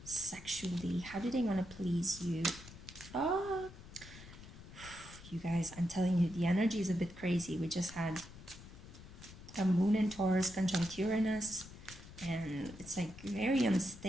sexually? How do they want to please you? Oh, you guys, I'm telling you, the energy is a bit crazy. We just had a moon in Taurus conjunct Uranus, and it's like very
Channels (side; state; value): left; noise; rumble, 16 dB below the sound